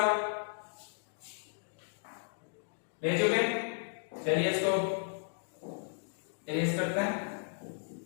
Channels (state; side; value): silent; right; digital silence